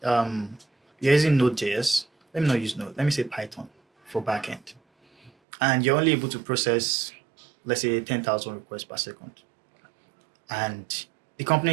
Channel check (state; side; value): drops out; left; at 5.3 s